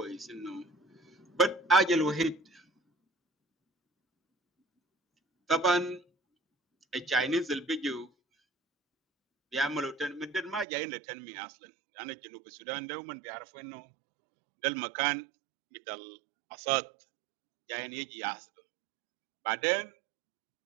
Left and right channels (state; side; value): drops out; left; at 10.7 s